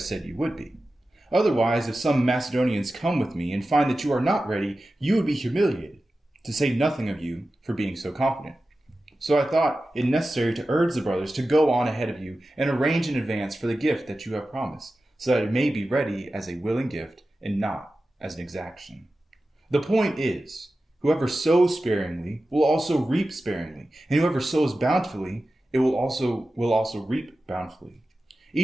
you would be. Otherwise, if some Macedonians come with me and find that you are not ready, you would be humiliated, to say nothing of you for being so confident. So I thought it necessary to urge the brothers to go on ahead of you and arrange in advance for the gift that you have promised, so that it may be ready as a willing gift and not as an exaction. The point is, whoever sows sparingly will also reap sparingly, and whoever sows bountifully, it will also reap bountifully.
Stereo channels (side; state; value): both; normal; correlation 0.94